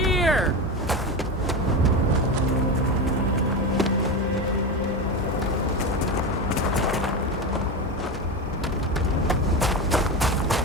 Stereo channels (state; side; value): normal; both; correlation 0.19